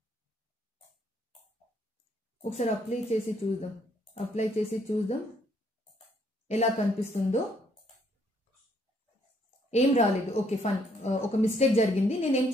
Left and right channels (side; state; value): both; normal; correlation 0.68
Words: ఒకసారి అప్లై చేసి చూద్దాం ఎలా కనిపిస్తుందో. ఏం రాలేదు. ఓకే, ఫన్, ఒక మిస్టేక్ జరిగింది. నేను ఏం